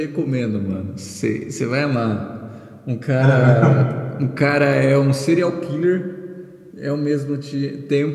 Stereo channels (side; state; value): both; identical; correlation 1.00